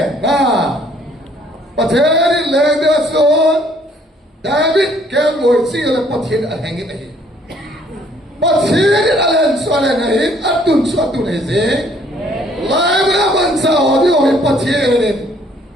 na. Pathere lende son David ke loy sila pathere alhangin ay. Pathere alan soalan nahin atun suatu neze, lain naman sa audio yung pathere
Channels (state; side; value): normal; both; correlation 0.62